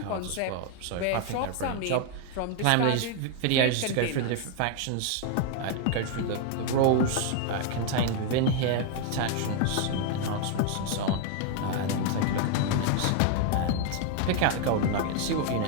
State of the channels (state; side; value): different; both; correlation 0.01